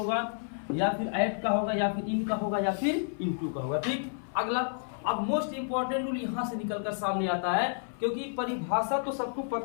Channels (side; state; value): right; silent; 57 dB below the other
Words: या फिर एट का होगा, या फिर इन का होगा, या फिर इनटू का होगा। ठीक, अगला अब मोस्ट इंपॉर्टेंट रूल यहाँ से निकलकर सामने आता है, क्योंकि परिभाषा तो सबको